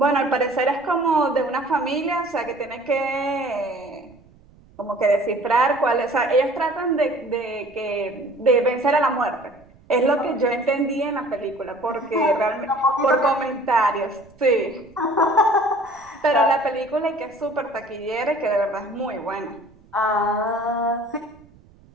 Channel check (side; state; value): right; noise; rumble, 27 dB below the sound